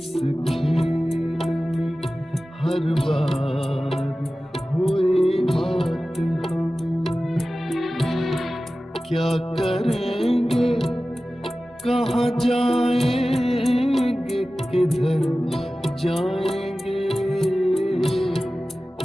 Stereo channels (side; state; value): both; normal; correlation 0.96